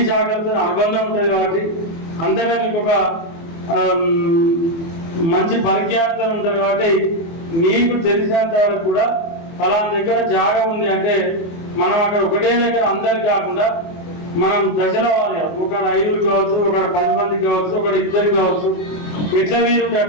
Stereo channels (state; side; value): late; right; 24 ms